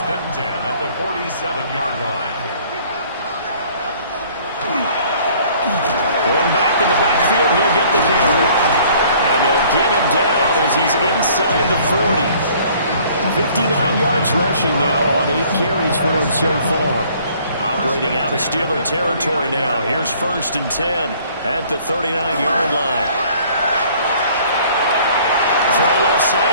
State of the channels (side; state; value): both; inverted; correlation -0.56